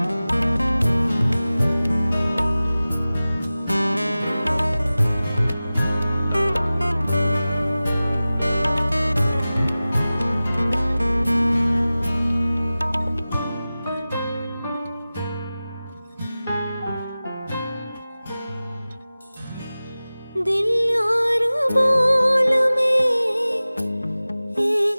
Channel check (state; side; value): inverted; both; correlation -0.97